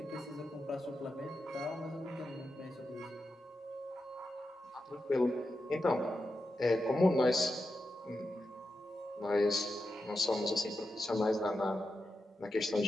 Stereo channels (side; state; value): both; normal; correlation 0.89